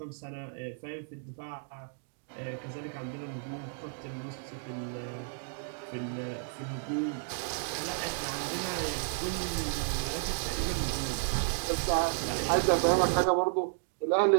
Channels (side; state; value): left; silent; digital silence